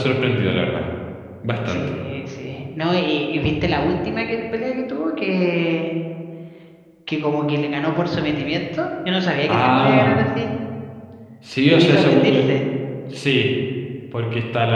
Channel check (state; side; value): identical; both; correlation 1.00